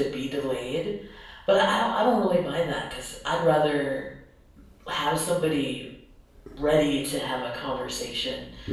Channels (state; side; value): identical; both; correlation 1.00